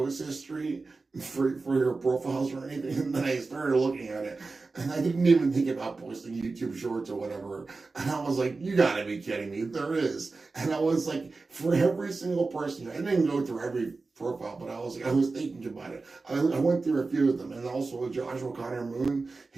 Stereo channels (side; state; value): left; quieter; 3.9 dB